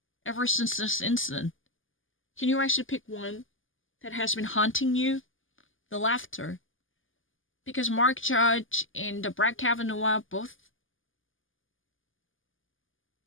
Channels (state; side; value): late; right; 0.58 ms